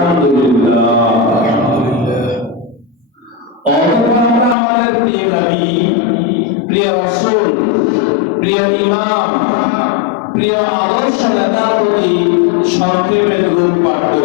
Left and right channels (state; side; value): drops out; right; at 4.5 s